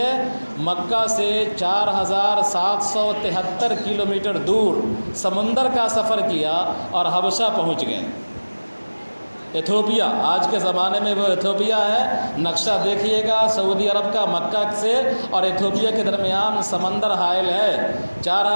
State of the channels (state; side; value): inverted; both; correlation -1.00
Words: مکہ سے 4773 کلومیٹر دور سمندر کا سفر کیا اور حبشہ پہنچ گئے۔ ایتھوپیا، آج کے زمانے میں وہ ایتھوپیا ہے۔ نقشہ دیکھیے گا، سعودی عرب کا مکہ سے اور ایتھوپیا کے درمیان سمندر حائل ہے۔